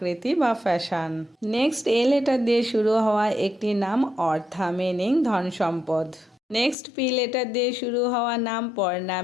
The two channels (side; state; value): right; drops out; at 6.8 s